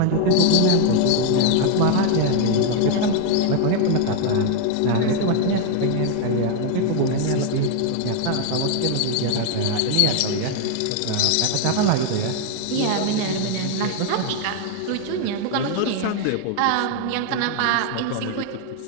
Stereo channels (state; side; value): different; both; correlation 0.00